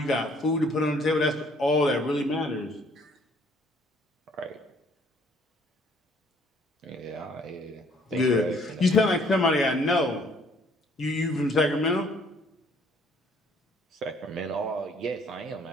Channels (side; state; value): both; normal; correlation 0.61